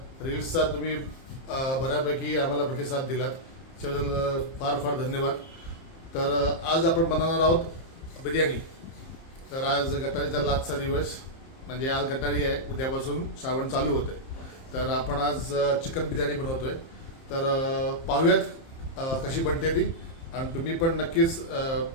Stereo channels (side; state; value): right; late; 30 ms